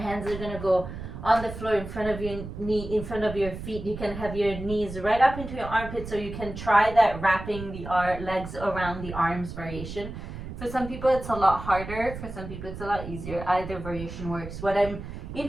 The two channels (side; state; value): right; noise; rumble, 9 dB below the sound